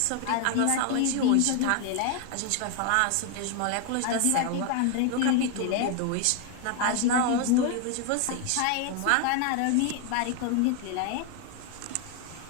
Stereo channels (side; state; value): both; different; correlation 0.01